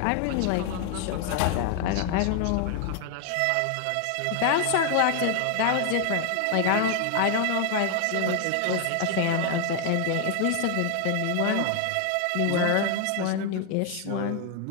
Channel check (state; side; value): different; both; correlation 0.00